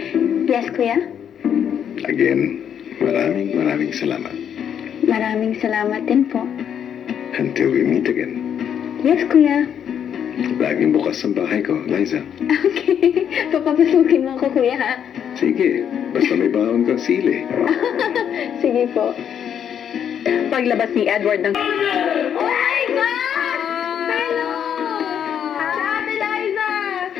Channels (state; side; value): quieter; right; 8.7 dB